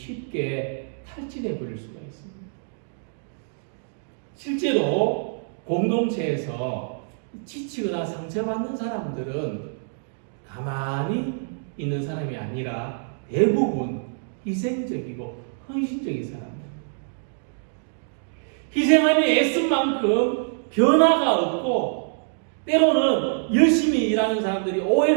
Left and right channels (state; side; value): silent; left; digital silence